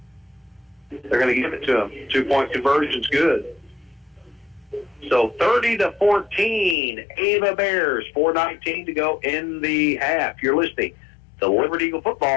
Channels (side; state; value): right; drops out; at 6.8 s